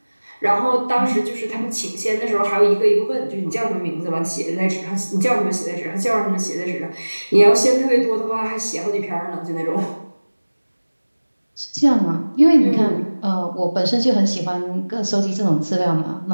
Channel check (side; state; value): both; inverted; correlation -1.00